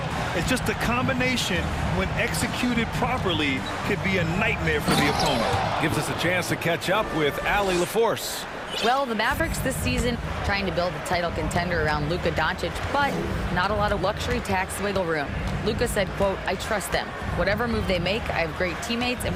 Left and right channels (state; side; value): identical; both; correlation 1.00